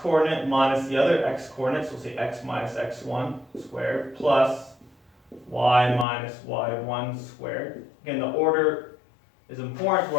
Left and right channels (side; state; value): right; drops out; at 6.1 s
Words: coordinate minus the other x coordinates, we'll say x minus x1 squared, plus y minus y1 squared. Again, the order is important